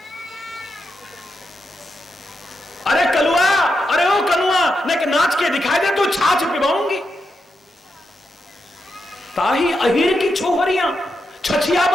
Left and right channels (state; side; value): normal; both; correlation 0.85